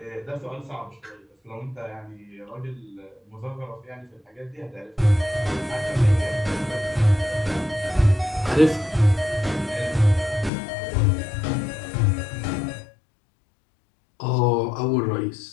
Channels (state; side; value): drops out; right; at 10.5 s